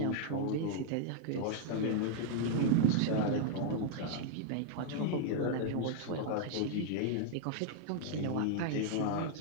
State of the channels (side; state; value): both; different; correlation 0.00